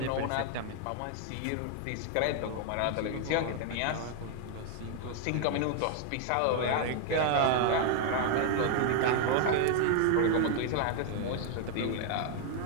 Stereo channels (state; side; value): different; both; correlation 0.00